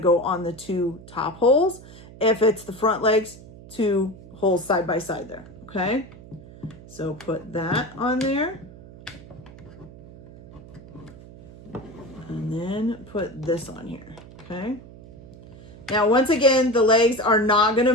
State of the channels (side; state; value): right; noise; hum, 18 dB below the sound